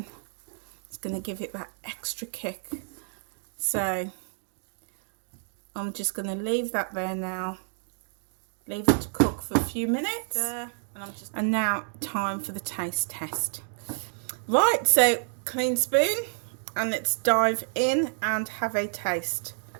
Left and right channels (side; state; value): left; silent; digital silence